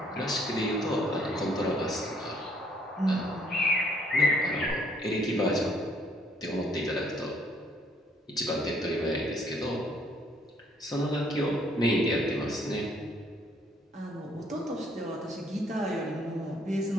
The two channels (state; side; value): normal; both; correlation 0.64